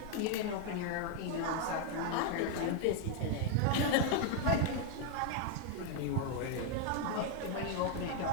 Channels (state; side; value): different; both; correlation 0.00